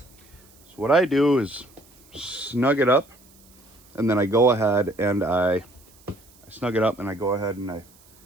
So what I do is snug it up, and then I go ahead and I snug it up, and I go ahead and I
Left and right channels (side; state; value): right; noise; hiss, 27 dB below the sound